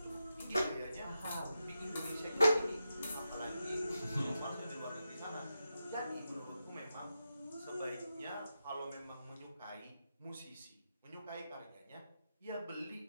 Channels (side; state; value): both; inverted; correlation -0.89